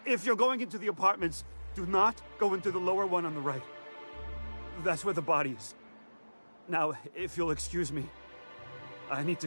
If you're going into the apartments, do not go into the lower one on the right. That's where the body is. Now, if you'll excuse me, I need to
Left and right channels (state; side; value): inverted; both; correlation -1.00